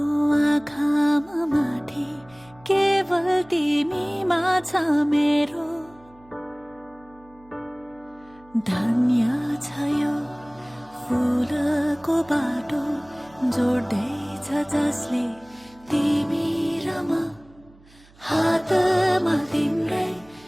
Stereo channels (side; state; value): right; noise; hum, 27 dB below the sound